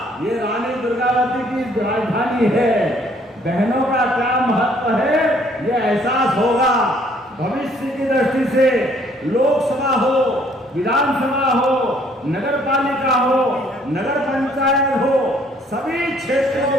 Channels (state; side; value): normal; both; correlation 0.62